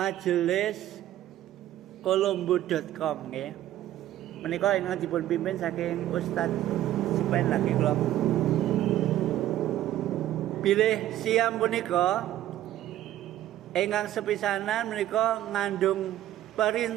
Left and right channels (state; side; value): quieter; left; 13.2 dB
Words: kolombo.com nggih. Menika ingkang dipun pimpin saking Ustaz Supen lagi kula. Bilih siam punika ingkang sepisanan menika ngandung